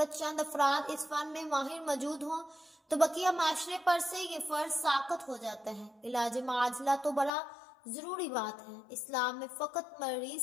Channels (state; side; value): drops out; right; at 7.3 s